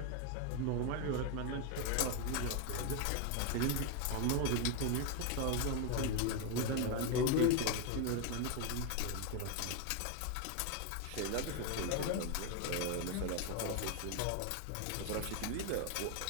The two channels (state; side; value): different; both; correlation 0.01